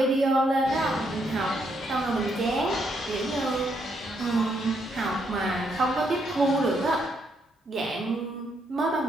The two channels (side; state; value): both; normal; correlation 0.75